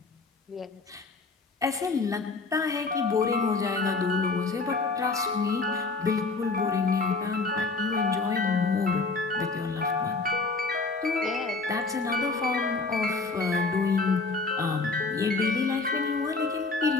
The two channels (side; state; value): right; quieter; 3.9 dB